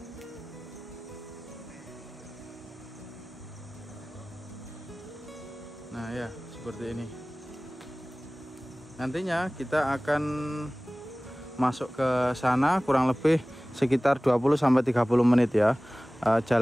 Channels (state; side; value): normal; both; correlation 0.98